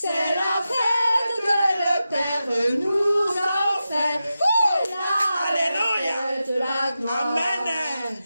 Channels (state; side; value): inverted; both; correlation -0.91